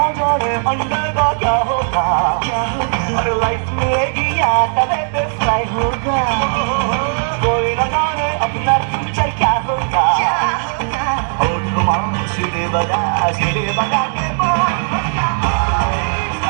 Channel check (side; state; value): left; silent; 57 dB below the other